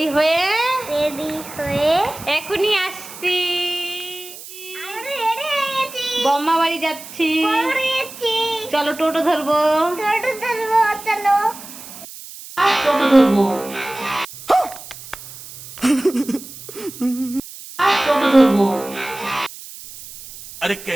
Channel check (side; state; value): right; noise; hiss, 15 dB below the sound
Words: হয়ে এখনই আসছি। বম্মা বাড়ি যাচ্ছি। চলো টোটো ধরবো। চলো। টোটো ধরবো। টোটো ধরবো। अरे